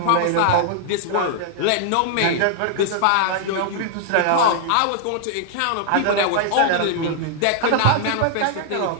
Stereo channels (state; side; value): different; both; correlation -0.01